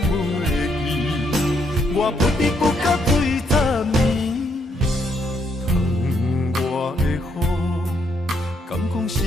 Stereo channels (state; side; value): normal; both; correlation 0.74